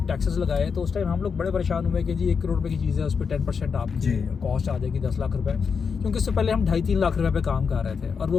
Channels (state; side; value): quieter; right; 5.9 dB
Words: टैक्सेस लगाए तो उस टाइम हम लोग बड़े परेशान हुए कि जी 1 करोड़ रुपए की चीज़ है, उस पर 10% आपकी कॉस्ट आ जाएगी 10 लाख रुपए, क्योंकि इससे पहले हम 2.5-3 लाख रुपए पे काम कर रहे थे और